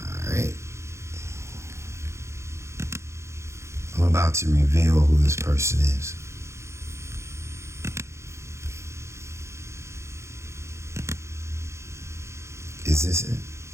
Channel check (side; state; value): left; late; 0.14 ms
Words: right. I'm about to reveal who this person is. Is this it?